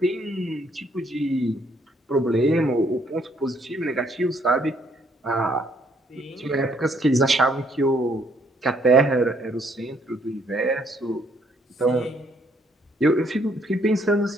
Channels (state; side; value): normal; both; correlation 0.68